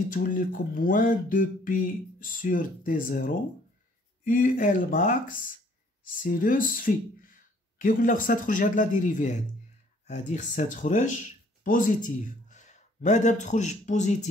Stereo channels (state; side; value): normal; both; correlation 0.60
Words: تولي لكم موان 2pi sur t0 ul max sinus phi. كي قلنا خصها تخرج هاد لا ديريفي هادي خصها تخرج بوزيتيف. مادام تخرج